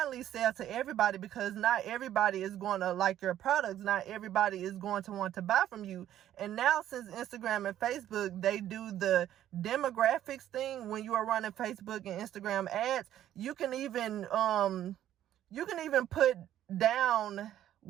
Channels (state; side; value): quieter; left; 11.8 dB